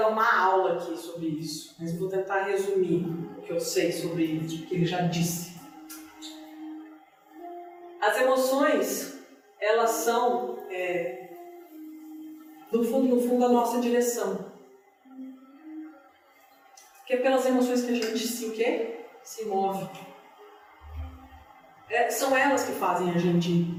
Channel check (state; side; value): identical; both; correlation 1.00